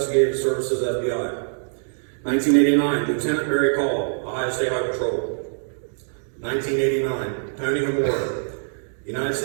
Services, FBI. 1989, Lieutenant Barry Call, Ohio State Highway Patrol. 1989, Tony Hamora, United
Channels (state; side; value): silent; left; digital silence